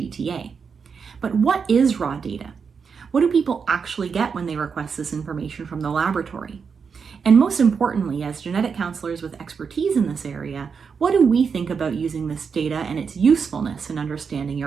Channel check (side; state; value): left; quieter; 5.9 dB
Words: But what is raw data? What do people actually get when they request this information from the laboratory? And most importantly, as genetic counselors with expertise in this area, what do we think about using this data and its usefulness in understanding